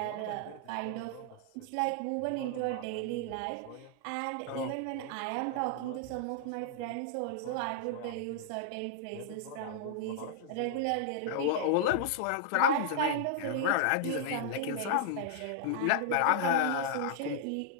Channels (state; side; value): different; both; correlation -0.01